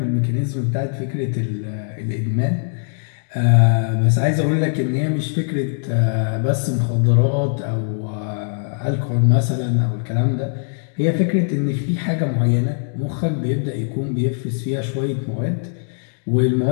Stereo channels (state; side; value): silent; right; digital silence